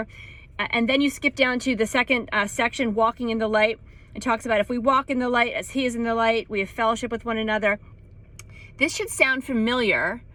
And then you skip down to the second section, walking in the light. It talks about if we walk in the light as he is in the light, we have fellowship with one another. This should sound familiar.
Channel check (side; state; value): both; identical; correlation 1.00